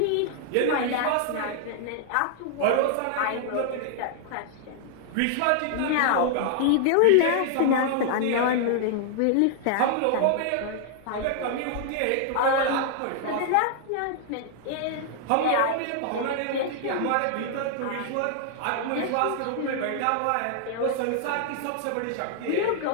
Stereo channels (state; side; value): different; both; correlation -0.01